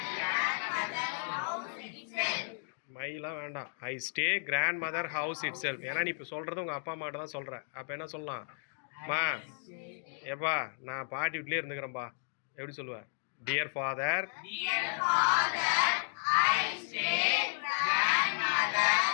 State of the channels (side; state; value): right; silent; digital silence